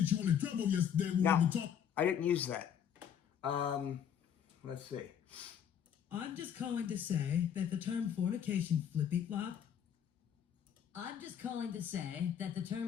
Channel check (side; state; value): right; quieter; 8.7 dB